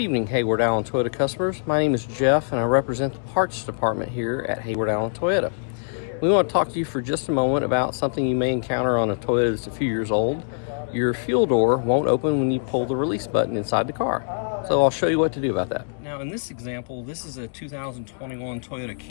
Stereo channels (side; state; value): right; silent; digital silence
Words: Hayward Allen Toyota customers. My name is Jeff and I represent the parts department here at Hayward Allen Toyota. We want to talk to you for just a moment about something you may encounter on a Toyota that's a few years old. Your fuel door won't open when you pull the release button inside the car. So I'll show you what to do about that. Now in this example, this is a 2021 Toyota